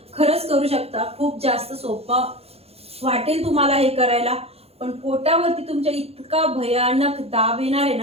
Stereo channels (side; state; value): left; late; 0.29 ms